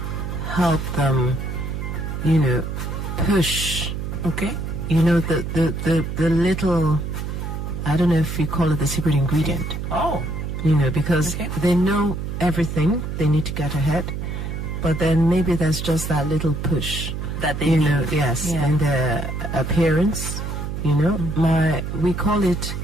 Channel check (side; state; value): right; noise; hum, 5 dB below the sound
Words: help them, you know, push. Okay. You know, the little, I don't know if you call it the secret ingredient. Oh. You know, because they know everything, they need to get ahead, but then maybe there's just that little push that they need. Know, yes, and their appearance, you know, we call it